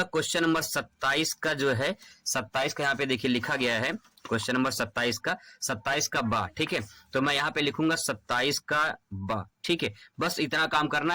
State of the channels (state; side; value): identical; both; correlation 1.00